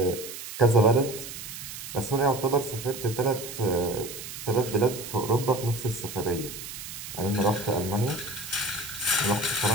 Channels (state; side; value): noise; right; hiss, 10 dB below the sound